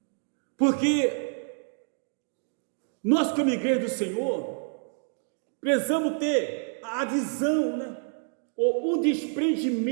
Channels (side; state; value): left; silent; 59 dB below the other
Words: Porque nós, como igreja do Senhor, precisamos ter a visão, né? Ou o